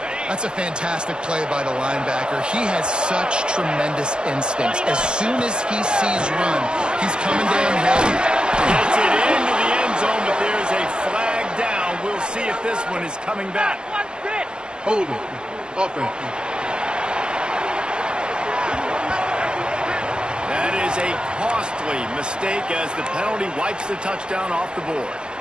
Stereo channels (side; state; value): left; late; 0.049 ms